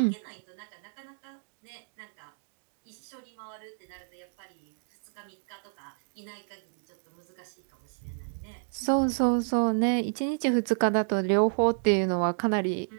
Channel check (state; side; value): silent; left; digital silence